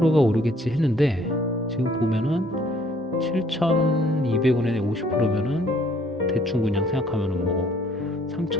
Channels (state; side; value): normal; both; correlation 0.62